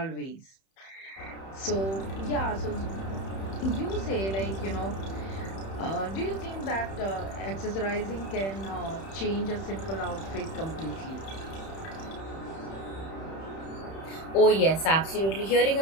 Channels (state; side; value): late; right; 31 ms